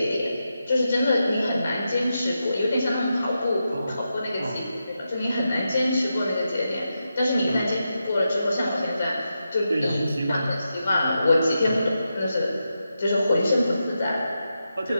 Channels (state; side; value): inverted; both; correlation -0.87